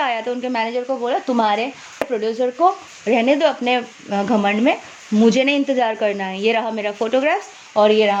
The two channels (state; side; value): identical; both; correlation 1.00